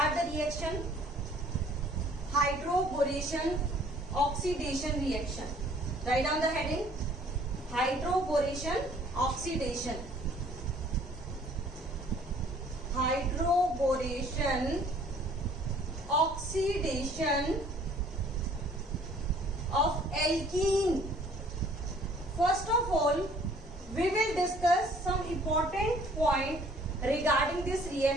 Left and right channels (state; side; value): normal; both; correlation 0.56